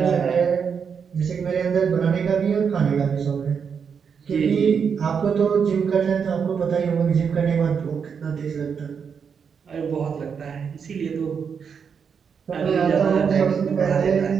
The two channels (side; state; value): left; quieter; 6.6 dB